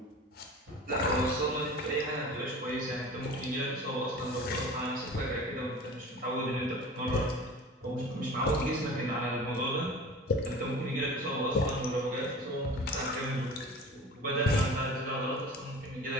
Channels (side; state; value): both; normal; correlation 0.39